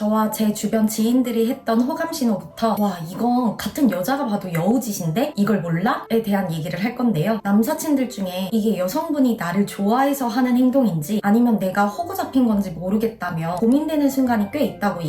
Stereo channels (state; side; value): identical; both; correlation 1.00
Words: 제 주변 지인들이 했던 호감 신호부터 와, 이건 같은 여자가 봐도 여우짓인데 이걸 몰라? 에 대한 얘기를 할 건데요. 남사친들 중에 이게 여성분이 나를 좋아해서 하는 행동인지 아니면 내가 호구 잡힌 건지 모르겠다며 고민되는 순간이 꽤 있다고